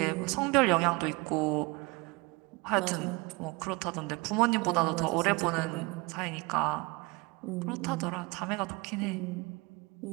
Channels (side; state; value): left; quieter; 25.8 dB